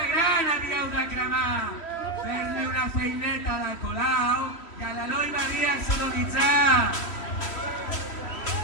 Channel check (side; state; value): right; late; 3.1 ms